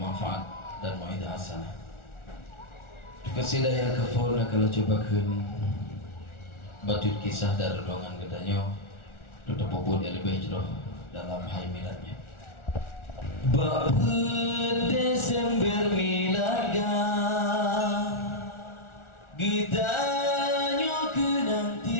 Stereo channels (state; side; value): late; right; 1.4 ms